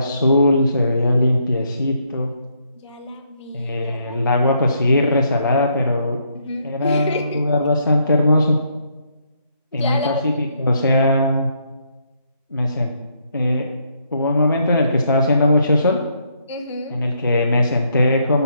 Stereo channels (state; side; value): inverted; both; correlation -0.73